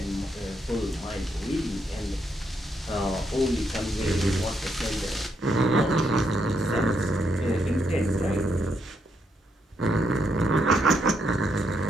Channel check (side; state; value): both; normal; correlation 0.77